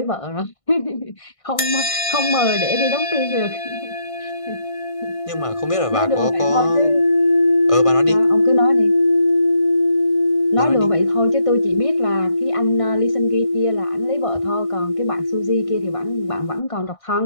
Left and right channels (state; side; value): late; right; 1.6 ms